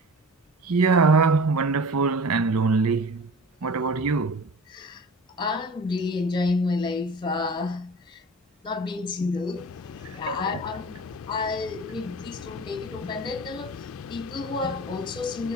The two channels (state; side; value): normal; both; correlation 0.38